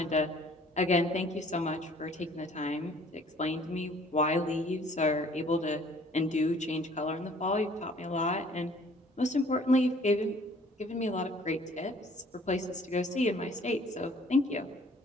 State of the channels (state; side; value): normal; both; correlation 0.55